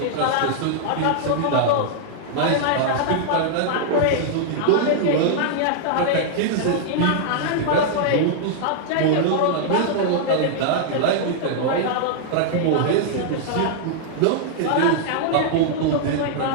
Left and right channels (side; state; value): both; different; correlation -0.01